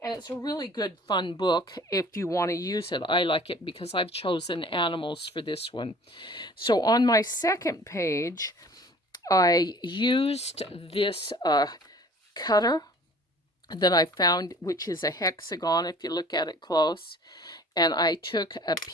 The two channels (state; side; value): normal; both; correlation 0.48